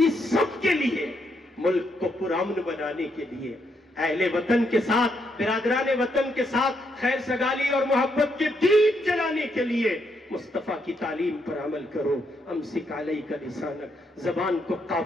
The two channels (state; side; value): normal; both; correlation 0.77